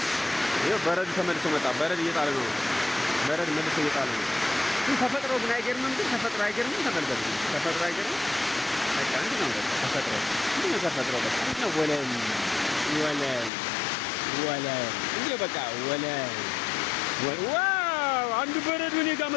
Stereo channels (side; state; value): right; drops out; at 13.5 s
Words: ይኸው በረዶ ተመልሶ መጣ። በረዶ እየጣለ ነው። በረዶ መልሶ እየጣለ ነው። ግን ተፈጥሮ ግን አይገርምም? ግን ተፈጥሮ አይገርምም? ተመልከቱ። ተፈጥሮ አይገርምም? በቃ እንዲህ ነው። በቃ ተፈጥሮ እንዲህ ነው። ተፈጥሮ በቃ እንዲህ ነው። ወለል እንዲህ በቃ ወለል። ዋው! አንዱ በረዶ እኔ ጋር